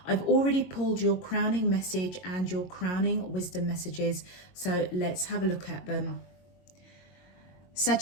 I've already pulled your crowning message and your crowning wisdom messages, so let's have a look at them.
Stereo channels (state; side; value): late; right; 22 ms